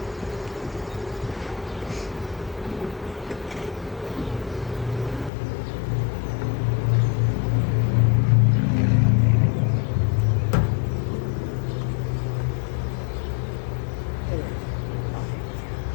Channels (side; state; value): right; drops out; at 5.3 s